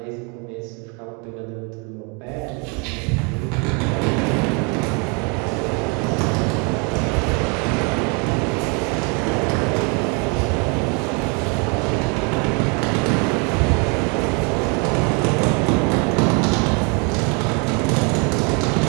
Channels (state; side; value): quieter; left; 32.6 dB